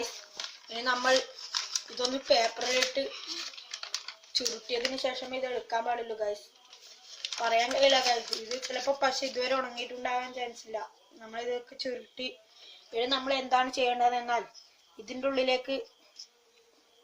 ഇനി നമ്മൾ ഇതൊന്ന് പേപ്പറിലിട്ട് ചുരുട്ടിയതിന് ശേഷം ഇത് എടുക്കാൻ പാടുള്ളൂ ഗായ്സ്. പറയാൻ കഴിയില്ല ഗായ്സ്. ഇത് ചിലപ്പോൾ പശ ഇതുവരെ ഉണങ്ങിയിട്ടുണ്ടാകാൻ ചാൻസ് ഇല്ല. നമ്മളിതൊക്കെ ചുരുട്ടി ഇനി നമ്മൾ എന്താണ് ചെയ്യേണ്ടതെന്നാൽ ഇതിൻ്റെ ഉള്ളിലേക്ക്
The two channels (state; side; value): identical; both; correlation 1.00